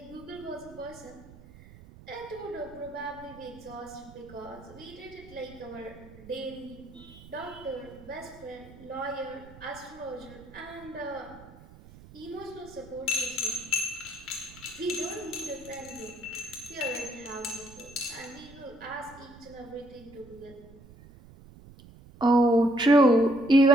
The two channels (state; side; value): noise; right; rumble, 19 dB below the sound